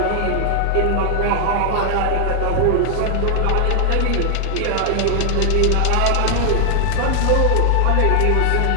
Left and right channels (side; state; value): both; different; correlation 0.00